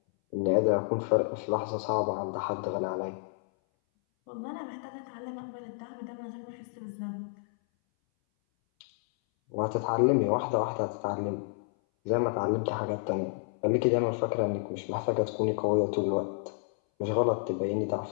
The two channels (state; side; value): silent; right; 58 dB below the other